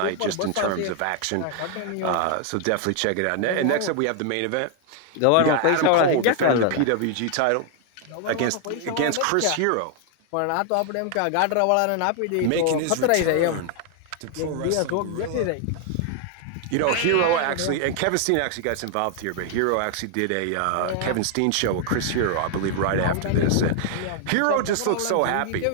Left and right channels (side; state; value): both; different; correlation 0.00